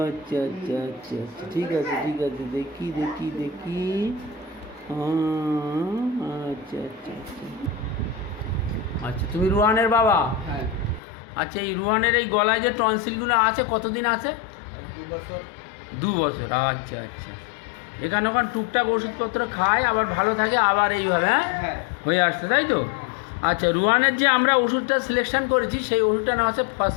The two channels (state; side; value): drops out; right; at 11.0 s